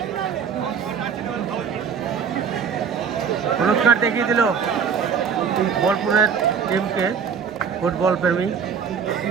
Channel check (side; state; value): left; quieter; 6.7 dB